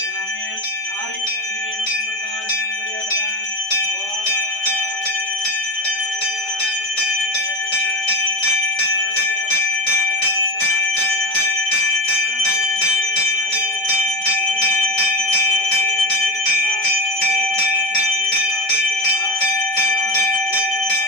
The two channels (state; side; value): late; right; 5.2 ms